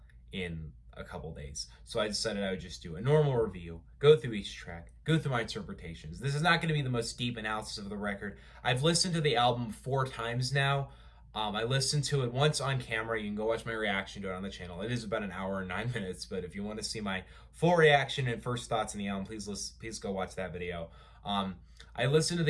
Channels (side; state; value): both; identical; correlation 1.00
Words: in a couple days. So I decided I would just do a normal review, go through each track, go through my interpretations. This is not going to be the most deep analysis of the record. I've listened to the album 4 times now. I listened to it once on camera. You can go watch my reaction to it on the channel. It is about an hour and 9 minutes, but if you want to see my full reaction and first thoughts on the album, please go watch that video. I listened to